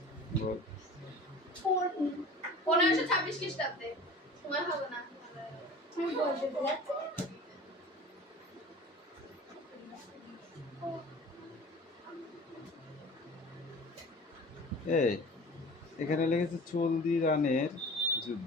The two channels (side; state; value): both; normal; correlation 0.40